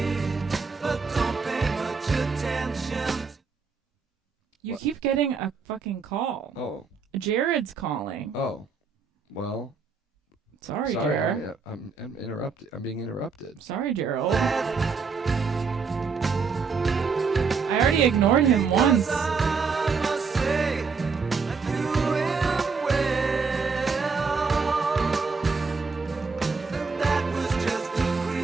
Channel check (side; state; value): left; quieter; 5.1 dB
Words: You keep getting a fucking call. Oh. Jared's calling. Oh. Well. Sorry, Jared. I'm interrupted. I'm being interrupted. Sorry, Gerald. I already ignored him once.